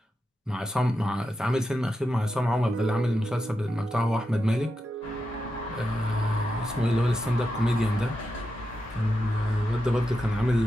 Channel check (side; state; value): both; normal; correlation 0.87